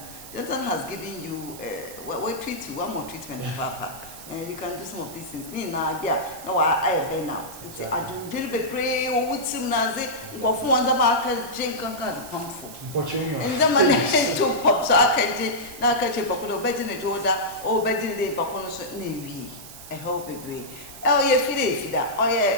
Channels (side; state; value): right; noise; hiss, 15 dB below the sound